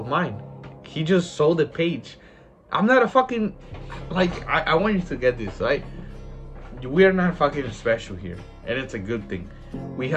mine. He just saw the page. I'm not a fucking, like, I want you to get this, right? We are not fucking special here, and it's a good thing. We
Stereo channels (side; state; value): both; identical; correlation 1.00